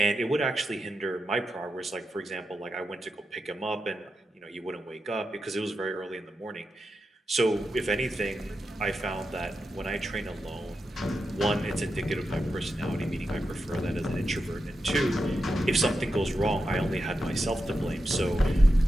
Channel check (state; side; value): normal; both; correlation 0.88